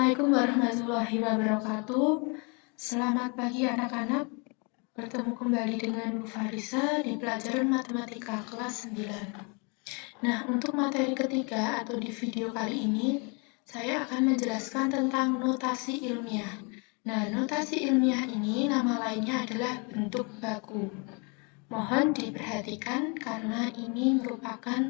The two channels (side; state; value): right; quieter; 33.1 dB